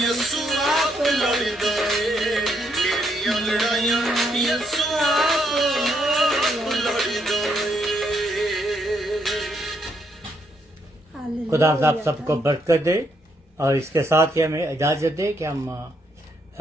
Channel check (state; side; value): normal; both; correlation 0.75